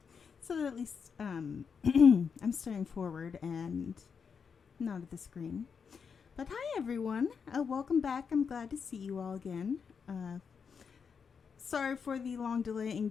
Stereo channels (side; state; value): right; quieter; 6.2 dB